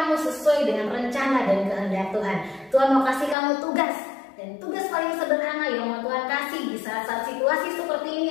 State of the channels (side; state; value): right; drops out; at 3.4 s